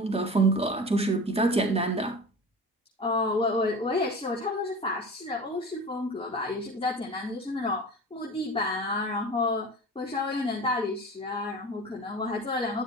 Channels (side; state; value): both; normal; correlation 0.34